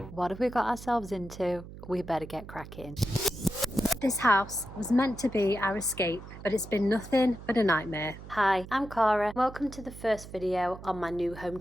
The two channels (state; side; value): noise; right; hum, 14 dB below the sound